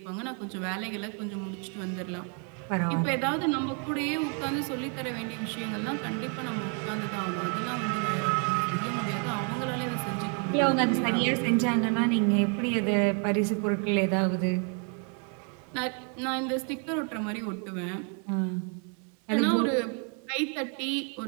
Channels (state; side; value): quieter; left; 39.6 dB